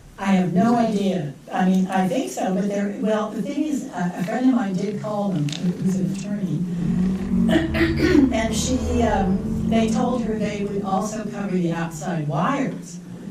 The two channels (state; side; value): identical; both; correlation 1.00